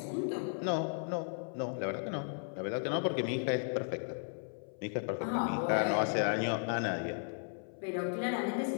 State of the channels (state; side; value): silent; right; 54 dB below the other